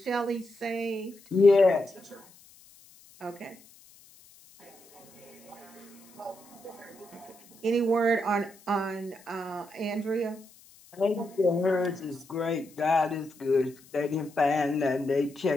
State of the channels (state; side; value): noise; left; hiss, 25 dB below the sound